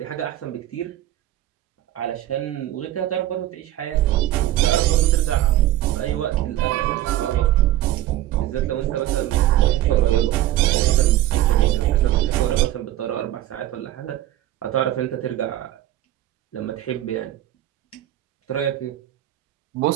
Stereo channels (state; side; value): quieter; left; 13.7 dB